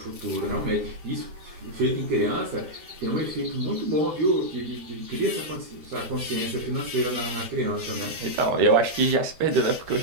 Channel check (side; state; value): left; late; 13 ms